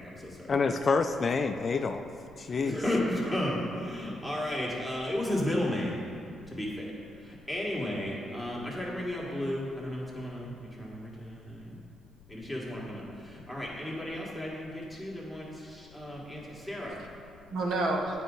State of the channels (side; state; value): left; noise; rumble, 24 dB below the sound